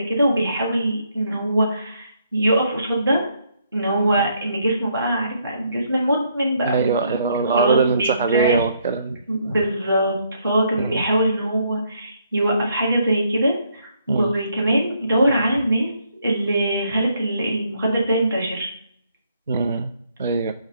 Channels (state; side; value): inverted; both; correlation -0.71